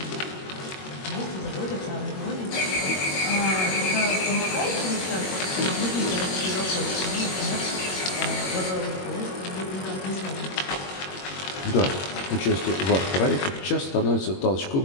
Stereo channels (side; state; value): right; late; 21 ms